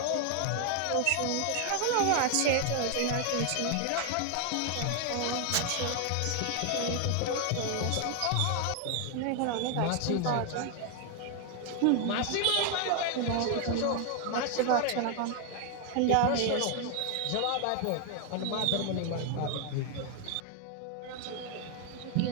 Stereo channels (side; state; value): both; different; correlation 0.00